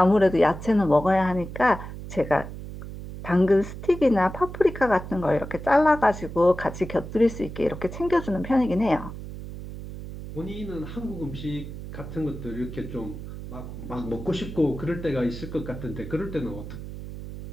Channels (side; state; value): right; noise; hum, 10 dB below the sound